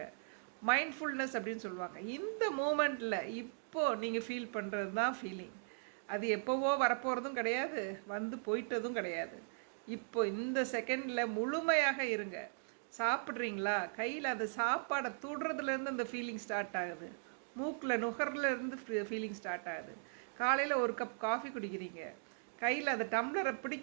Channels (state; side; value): silent; left; digital silence